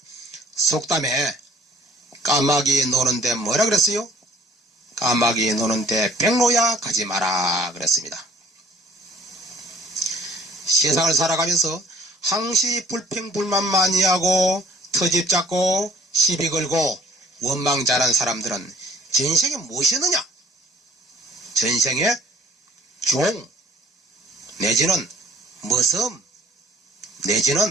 속담에 까마귀 노는데 뭐라 그랬어요? 까마귀 노는데 백로야 가지 마라 그랬습니다. 세상을 살아가면서 항시 불평불만 많이 하고 터집 잡고 시비 걸고 원망 잘한 사람들은 전생에 무엇이었느냐? 전생에 종 내지는 머슴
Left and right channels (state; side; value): normal; both; correlation 0.54